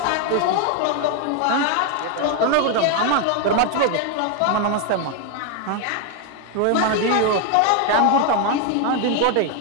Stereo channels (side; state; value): both; different; correlation 0.01